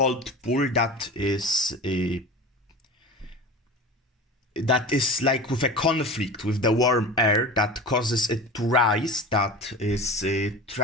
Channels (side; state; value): both; normal; correlation 0.34